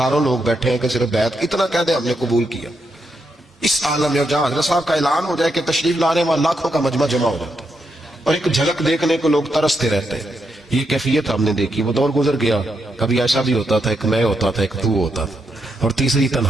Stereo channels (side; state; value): both; normal; correlation 0.82